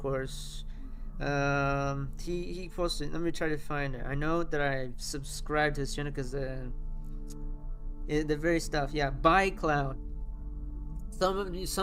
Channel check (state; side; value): identical; both; correlation 1.00